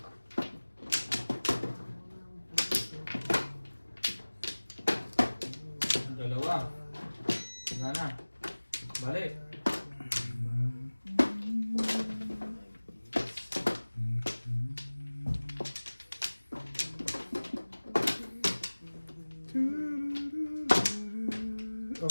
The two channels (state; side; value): inverted; both; correlation -1.00